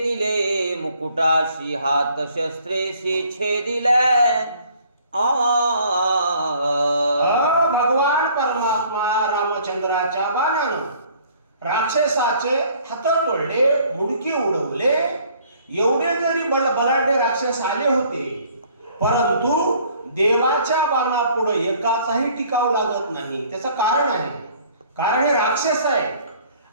मुकुटाशी, हात शस्त्रेशी छेदिले. भगवान परमात्मा रामचंद्राच्या बाणानं राक्षसाचे हात तोडले, मुडके उडवले. एवढे जरी बलाढ्य राक्षस आले होते, परंतु देवाच्या बाणापुढे एकाचाही टिकाव लागत नाही. त्याचं कारण आहे, कारण हे राक्षस आहे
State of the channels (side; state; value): both; inverted; correlation -0.57